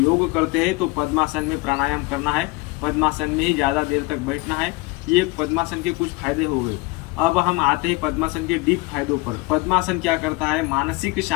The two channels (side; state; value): right; quieter; 23.9 dB